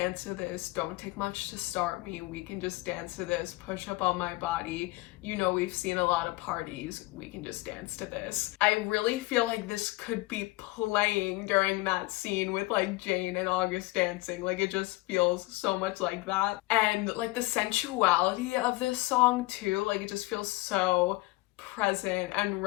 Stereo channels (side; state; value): right; quieter; 21.2 dB